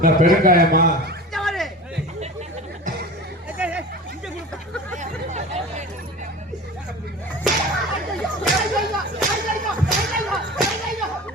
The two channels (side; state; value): both; normal; correlation 0.34